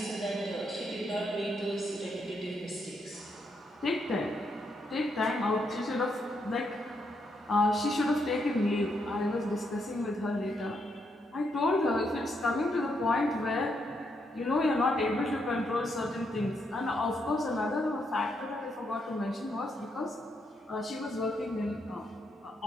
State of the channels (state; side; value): normal; both; correlation 0.78